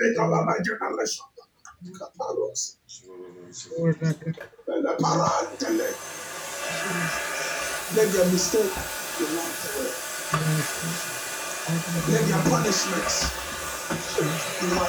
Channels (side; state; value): both; identical; correlation 1.00